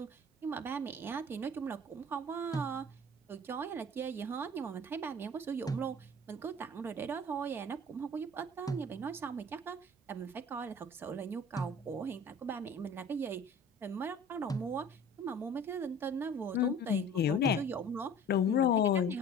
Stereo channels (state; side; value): normal; both; correlation 0.45